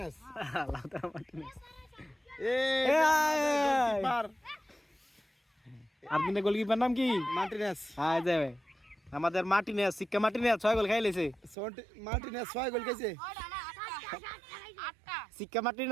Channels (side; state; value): left; drops out; at 11.6 s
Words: Lautaro Martinez. Goalkeeper. Argentina goalkeeper নাম কি? মার্টিনেস। হ্যাঁ যাবে আমাদের মার্টিনেস সিক্কা মার্টিনেস 6 গোল খাইলেছে। মার্টিনেস 6 গোল খাইছে। সিক্কা